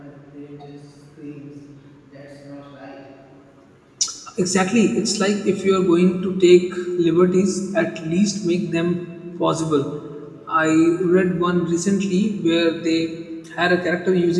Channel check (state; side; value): identical; both; correlation 1.00